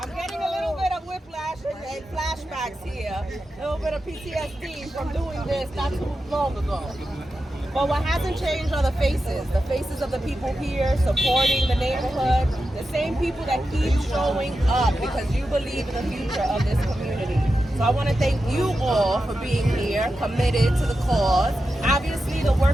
And flashbacks here, a little bit of PTSD from doing this not too long ago. But what hasn't changed are the faces of the people here supporting the neighborhood, the same people that keep showing up because you believe in the future of this community. So I want to thank you all for being here, committed to the cause. Obviously, the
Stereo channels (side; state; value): both; normal; correlation 0.90